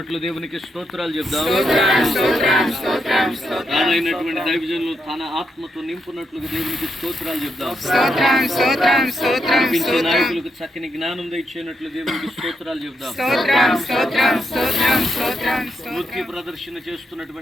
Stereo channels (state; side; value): normal; both; correlation 0.81